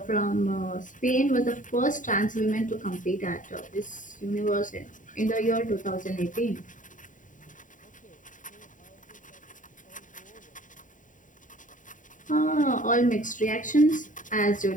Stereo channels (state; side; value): late; right; 0.38 ms